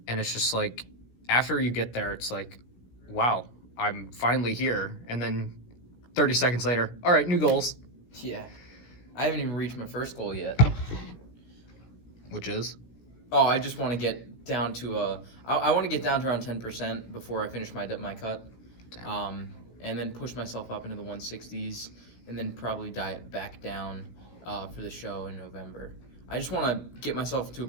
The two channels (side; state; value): right; late; 16 ms